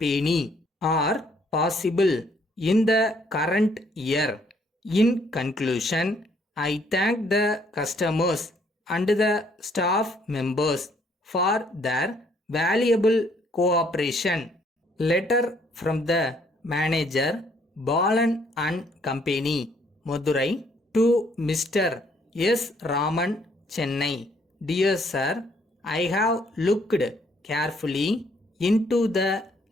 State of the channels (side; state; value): both; normal; correlation 0.66